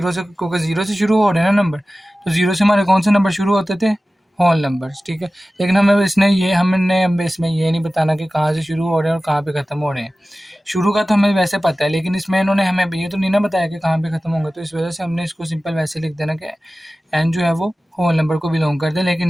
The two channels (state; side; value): normal; both; correlation 0.96